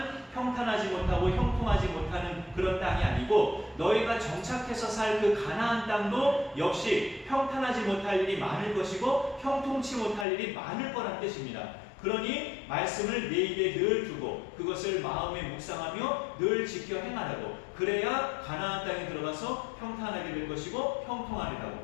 평탄하지 못하고 형통하지 못하는 그런 땅이 아니고, 너희가 정착해서 살 그 가나안 땅도 역시 평탄하지 못할 일이 많을 것이고 형통치 못할 일이 많을 거란 뜻입니다. 그러니 말씀을 내 입에 늘 두고 그것을 마음에 묵상하며 늘 지켜 행하라고, 그래야 가나안 땅에 들어가서 평탄하게 될 것이고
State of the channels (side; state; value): right; drops out; at 10.2 s